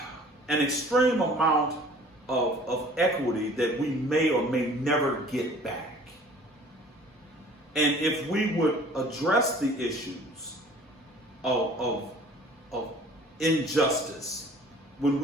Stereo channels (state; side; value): normal; both; correlation 0.50